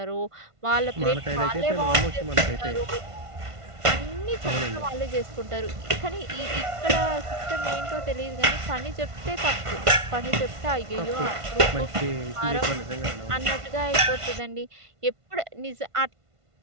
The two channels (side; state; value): left; late; 1.5 ms